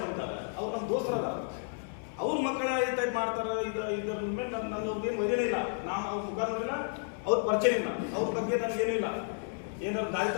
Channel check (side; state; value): right; silent; digital silence